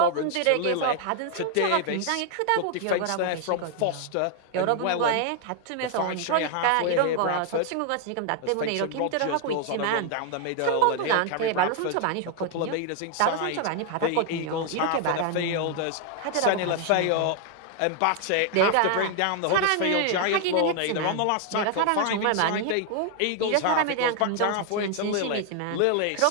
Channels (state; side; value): different; both; correlation 0.00